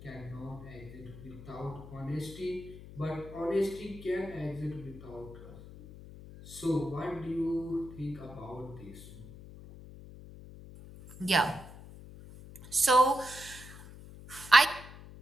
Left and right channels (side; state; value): left; noise; hum, 15 dB below the sound